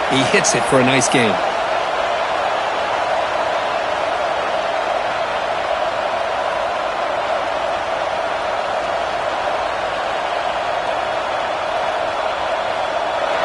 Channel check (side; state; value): both; identical; correlation 1.00